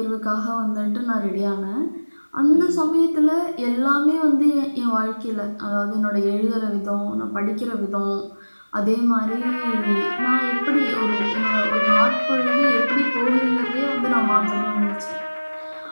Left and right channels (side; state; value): both; inverted; correlation -1.00